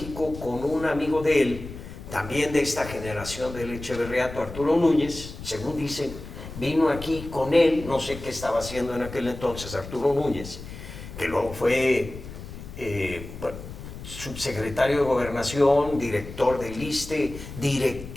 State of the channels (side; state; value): left; noise; rumble, 12 dB below the sound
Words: con un amigo de él, también de esta generación del Echeverriato, Arturo Núñez, según dicen, vino aquí con él, no sé qué estaba haciendo en aquel entonces Arturo Núñez, que luego fue subsecretario de Gobernación, director del ISSSTE,